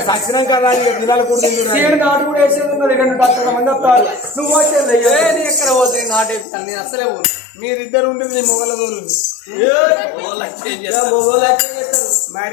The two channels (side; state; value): right; drops out; at 6.5 s